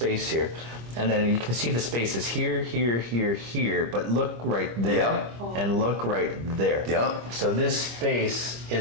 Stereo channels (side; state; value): left; late; 25 ms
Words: here. And then you can see the spaces here, here, here, here, but look right there, and look right there. Yeah. So this space